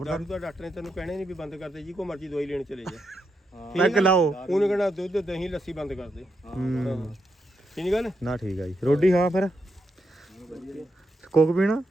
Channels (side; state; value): both; normal; correlation 0.83